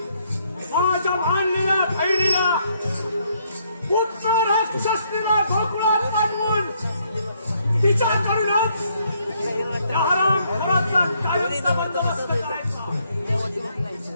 माझ्या मानलेल्या बहिणीला पुत्र राक्षसनीला गोकुळात पाठवून तिच्याकडूनच त्या हरामखोराचा कायमचा बंदोबस्त करायचा.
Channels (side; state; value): both; inverted; correlation -0.70